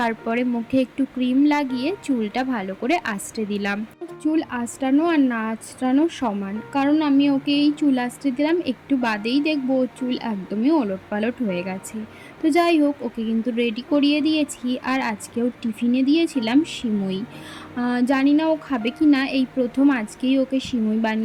মুখে একটু ক্রিম লাগিয়ে চুলটা ভালো করে আঁচড়ে দিলাম। চুল আঁচড়ানো আর না আঁচড়ানো সমান, কারণ আমি ওকে এই চুল আঁচড়ে দিলাম, একটু বাদেই দেখবো ওর চুল একদমই ওলট পালট হয়ে গেছে। তো যাই হোক, ওকে কিন্তু রেডি করিয়ে দিয়েছি। আর আজকেও টিফিনে দিয়েছিলাম সিমুই। জানি না ও খাবে কি না, এই প্রথম আজকেই ওকে সিমুই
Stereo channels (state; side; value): identical; both; correlation 1.00